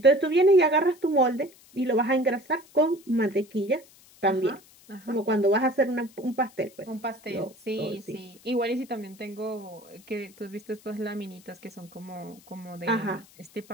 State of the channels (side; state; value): left; noise; hiss, 26 dB below the sound